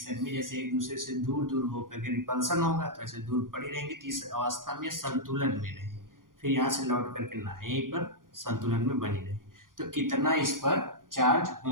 में, जैसे एक दूसरे से दूर दूर होकर के रिपल्सन होगा तो ऐसे दूर पड़ी रहेंगी, तो इस अवस्था में संतुलन में रहे, फिर यहाँ से लौट करके ना यहीं पर संतुलन में बनी रहे। तो कितना इस पर चार्ज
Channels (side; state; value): left; late; 0.90 ms